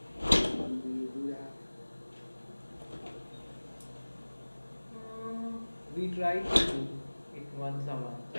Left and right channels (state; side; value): inverted; both; correlation -1.00